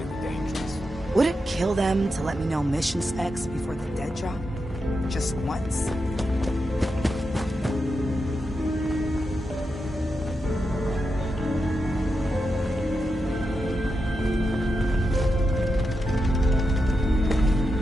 dangerous. Would it kill them to let me know mission specs before the dead drop? Just once?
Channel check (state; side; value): normal; both; correlation 0.87